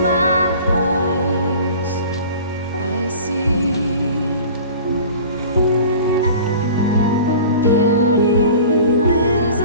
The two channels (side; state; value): both; inverted; correlation -0.42